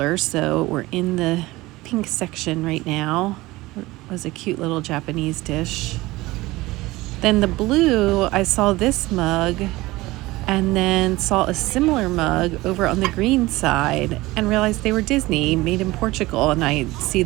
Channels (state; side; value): quieter; left; 19.6 dB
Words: so we're in the pink section right now. It was a cute little Japanese dish. Then the blue, I saw this mug and then saw a similar mug over on the green side and realized they were Disney, made in Portugal, and I see